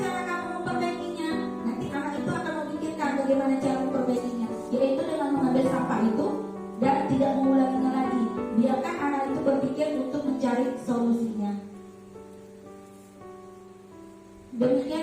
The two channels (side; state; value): both; identical; correlation 1.00